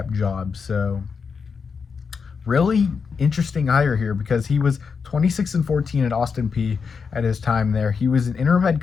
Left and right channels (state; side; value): quieter; right; 5.6 dB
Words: job. So really interesting hire here because he was 26-14 at Austin Peay at his time there. He was an interim head